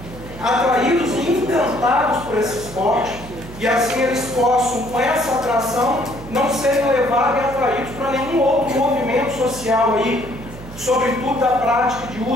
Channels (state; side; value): noise; right; hum, 16 dB below the sound